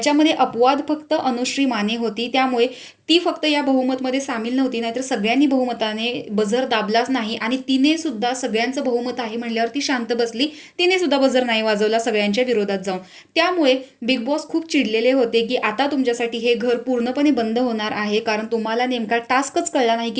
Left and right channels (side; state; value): both; identical; correlation 1.00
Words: अपवाद फक्त अनुश्री माने होती, त्यामुळे ती फक्त या बहुमतमध्ये सामील नव्हती. नाहीतर सगळ्यांनी बहुमताने बझर दाबलाच नाही आणि तिने सुद्धा सगळ्यांचं बहुमत आहे म्हणल्यावर ती शांत बसली. तिने सुद्धा बझर नाही वाजवला सगळ्यांच्या विरोधात जाऊन. त्यामुळे बिग बॉस खूप चिडलेले होते की आता तुमच्यासाठी हे घर पूर्णपणे बंद होणार आहे, कारण तुम्हाला नेमका टास्कच कळला नाही